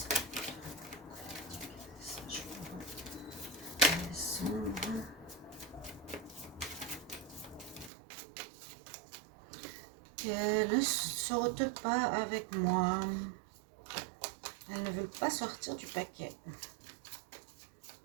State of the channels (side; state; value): left; drops out; at 7.9 s